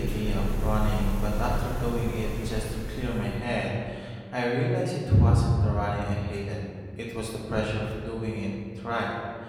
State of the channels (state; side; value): identical; both; correlation 1.00